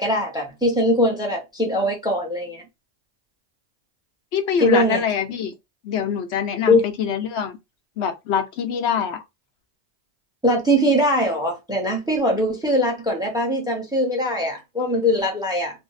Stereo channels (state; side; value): normal; both; correlation 0.22